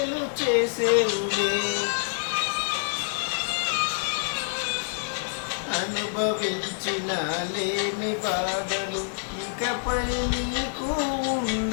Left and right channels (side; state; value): right; silent; digital silence